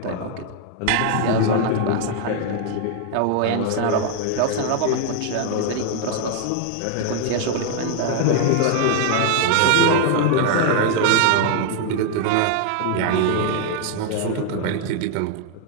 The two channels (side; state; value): both; different; correlation 0.00